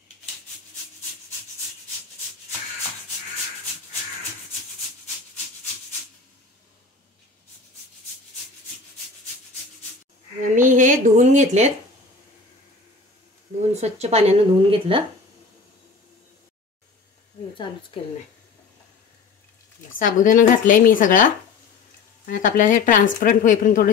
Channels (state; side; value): quieter; right; 4.4 dB